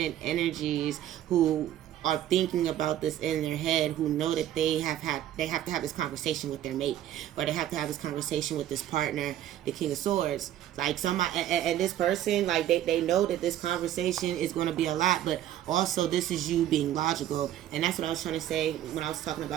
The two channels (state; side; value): quieter; left; 12.1 dB